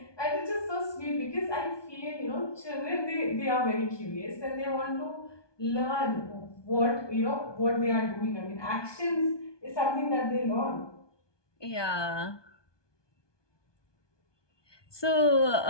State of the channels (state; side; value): late; right; 1.2 ms